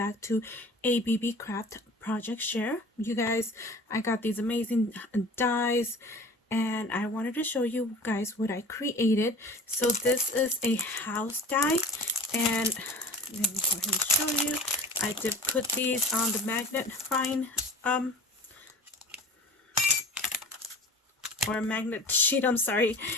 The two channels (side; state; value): both; normal; correlation 0.38